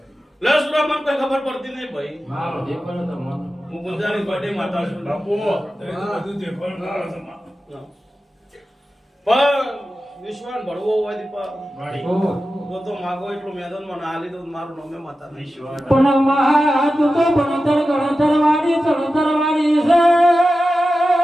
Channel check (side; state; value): both; normal; correlation 0.93